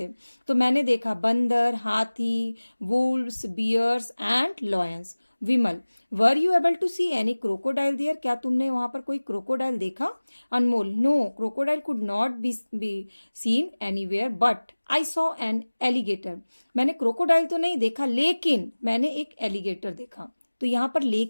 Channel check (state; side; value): inverted; both; correlation -1.00